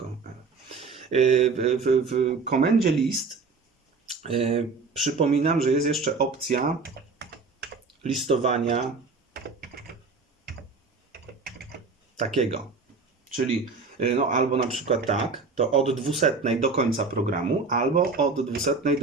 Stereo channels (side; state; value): left; quieter; 4.4 dB